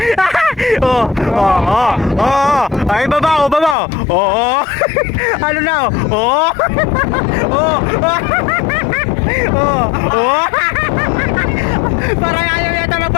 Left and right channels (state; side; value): drops out; right; at 3.8 s